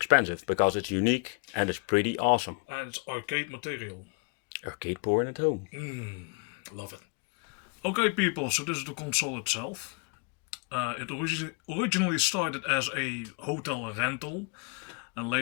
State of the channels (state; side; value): quieter; right; 33.4 dB